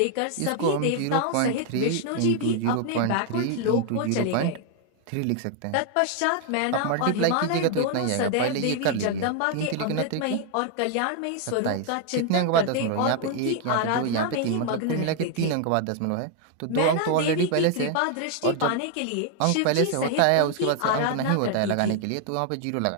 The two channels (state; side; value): different; both; correlation 0.00